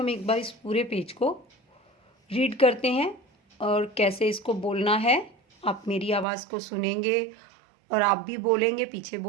एक बार इस पूरे पेज को रीड करते हैं और कैसे इसको बोलना है। आप मेरी आवाज़ को सुनेंगे और आप भी बोलेंगे, पीछे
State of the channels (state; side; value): drops out; left; at 6.2 s